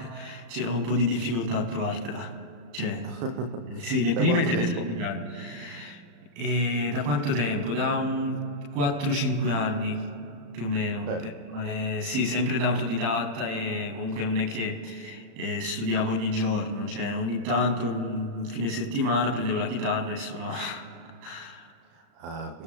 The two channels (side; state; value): left; late; 35 ms